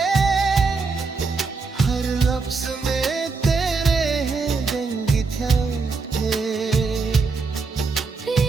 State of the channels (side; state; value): left; quieter; 4.4 dB